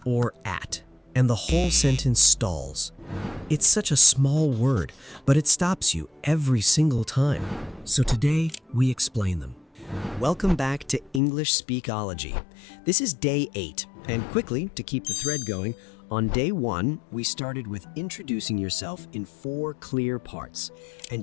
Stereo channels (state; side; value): drops out; right; at 11.2 s